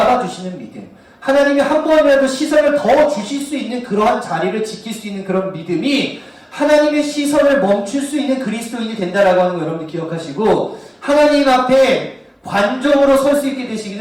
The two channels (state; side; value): identical; both; correlation 1.00